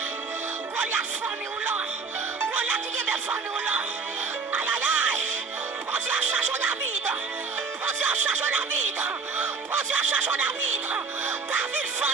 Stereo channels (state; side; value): quieter; left; 5.0 dB